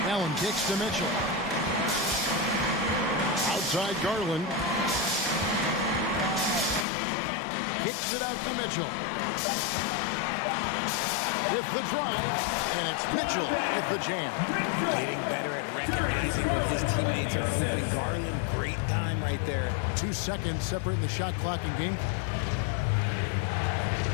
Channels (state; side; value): drops out; right; at 6.9 s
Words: Allen kicks to Mitchell. Outside Garland. Kicks it out to Mitchell. With the drive, and it's Mitchell with the jam. Getting better at recognizing when his teammates are open. Garland, great time right there. 2 seconds separating the shot clock and game.